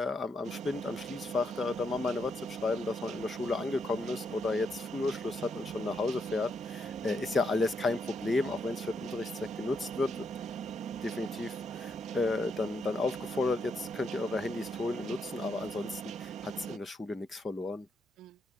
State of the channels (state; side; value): normal; both; correlation 0.78